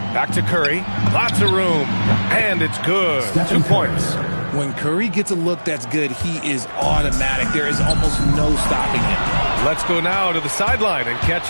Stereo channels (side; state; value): both; inverted; correlation -1.00